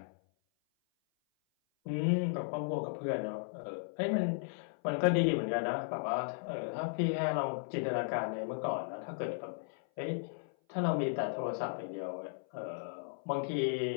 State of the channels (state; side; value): silent; right; 54 dB below the other